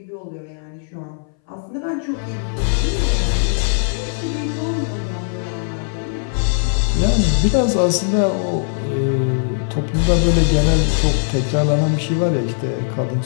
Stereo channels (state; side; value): silent; right; 62 dB below the other